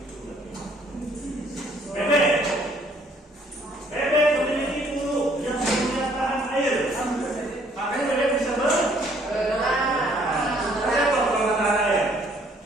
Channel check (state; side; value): normal; both; correlation 0.62